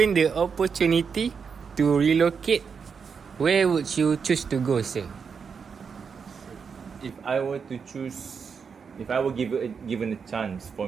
the opportunity to relocate, where would you choose to go, sir? If I were to choose, if I were given a chance for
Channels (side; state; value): left; quieter; 6.0 dB